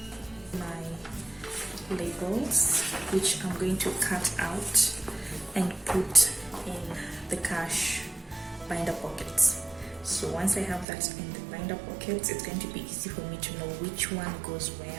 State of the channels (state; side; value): drops out; left; at 10.9 s